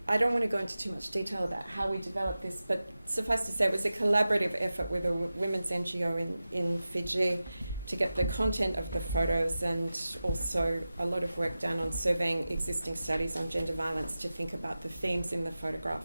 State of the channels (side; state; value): both; inverted; correlation -0.94